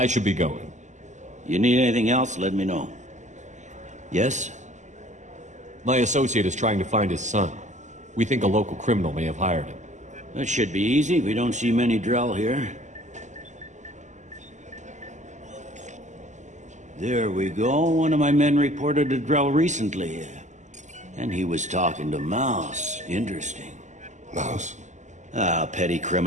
should be going. You need anything else, let me know. Yes? My associate is trying to find his son. We think a local criminal may have hired him. That should be easy. We don't see many Drell here. There we go. One of my men reported a Drell recently. And he was talking to Mouse. Interesting. Mouse? Ah, petty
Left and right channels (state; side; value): late; left; 0.34 ms